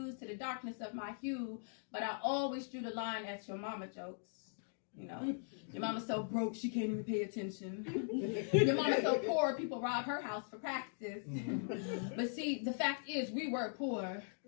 to the darkness of my hue, but I always drew the line at your mama jokes. You know, your mama's so broke she can't even pay attention. Your mama's so poor people rob her house for practice. But see, the fact is we were poor.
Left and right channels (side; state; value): right; silent; digital silence